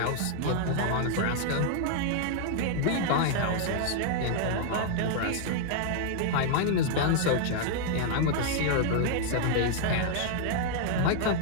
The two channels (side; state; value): both; different; correlation -0.01